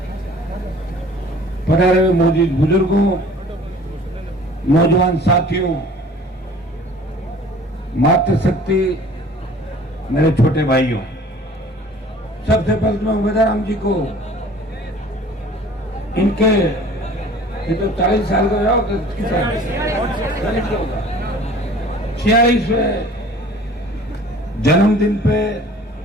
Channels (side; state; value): both; normal; correlation 0.48